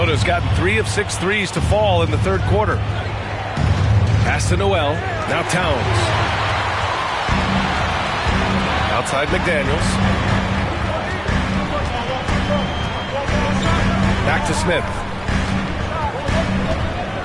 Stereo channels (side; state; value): both; identical; correlation 1.00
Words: gotten 3 of 6 threes to fall in the third quarter. Pass to Noel. Now Towns. Outside McDaniels. Back to Smith.